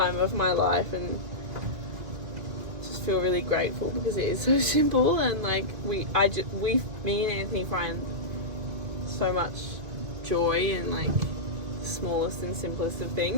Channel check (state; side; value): late; left; 2.5 ms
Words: of my life and just feel really grateful because it is so simple, and like me and Anthony find so much joy in like the smallest and simplest of